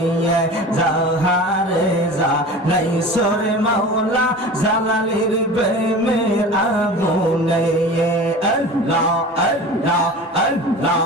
যাহারে জ্বালাইছর মাওলা জালালের প্রেমের আগুনে। আল্লাহ আল্লাহ আল্লাহ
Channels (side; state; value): both; normal; correlation 0.36